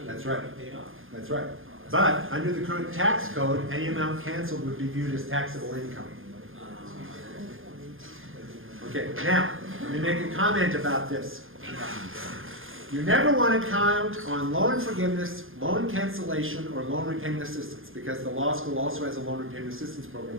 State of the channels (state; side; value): late; left; 0.59 ms